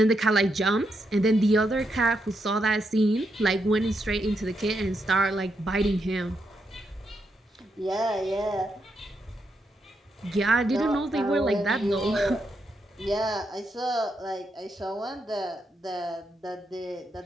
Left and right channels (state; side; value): normal; both; correlation 0.82